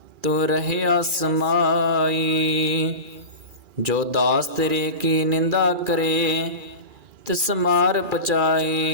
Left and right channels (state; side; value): late; left; 2.4 ms